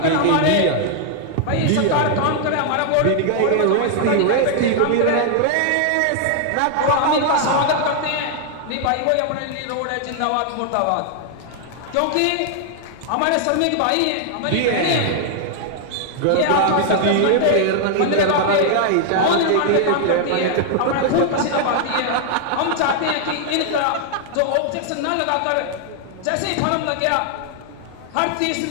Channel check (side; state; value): both; different; correlation 0.00